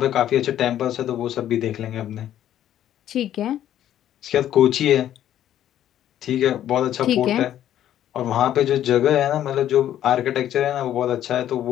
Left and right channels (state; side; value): quieter; right; 11.4 dB